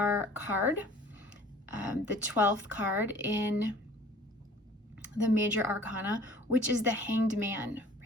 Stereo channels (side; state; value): both; normal; correlation 0.49